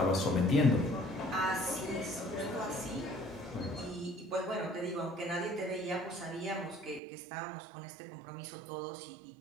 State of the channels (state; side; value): drops out; left; at 7.0 s